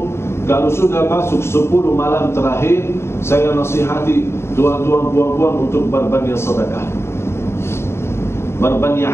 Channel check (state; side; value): late; right; 0.12 ms